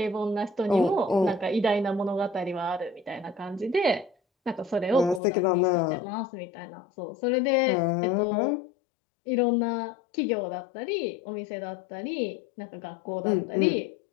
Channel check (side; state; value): right; drops out; at 5.2 s